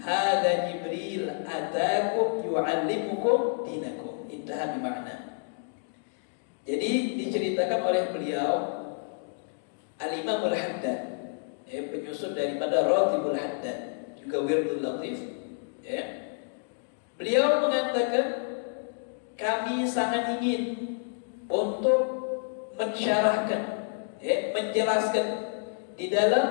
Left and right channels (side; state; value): right; silent; digital silence